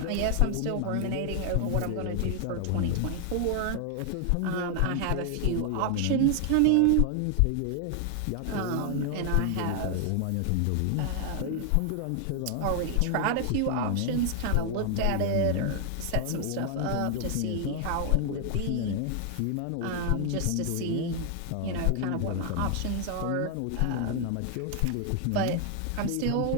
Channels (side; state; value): both; different; correlation 0.00